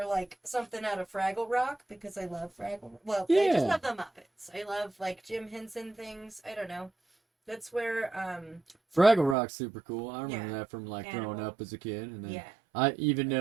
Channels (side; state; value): left; drops out; at 9.3 s